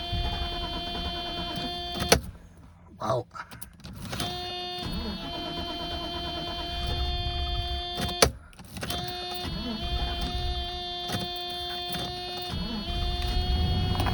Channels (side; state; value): both; identical; correlation 1.00